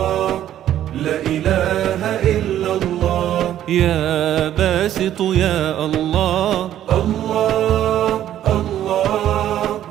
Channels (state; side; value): quieter; left; 11.7 dB